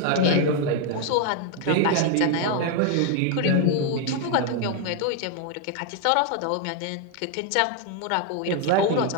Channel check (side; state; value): both; different; correlation 0.01